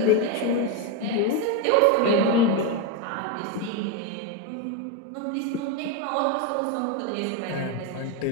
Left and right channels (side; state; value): both; different; correlation 0.03